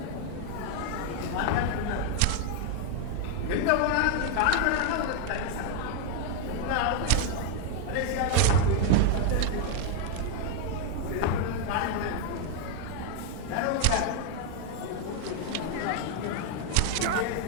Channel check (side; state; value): both; different; correlation 0.00